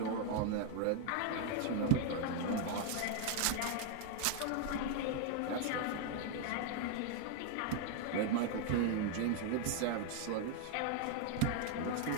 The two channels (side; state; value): both; different; correlation 0.00